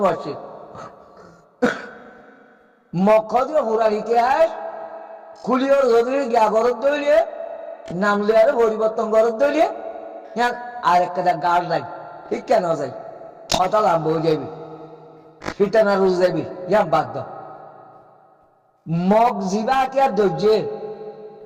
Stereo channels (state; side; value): identical; both; correlation 1.00